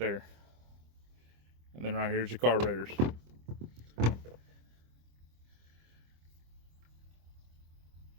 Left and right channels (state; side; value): late; left; 25 ms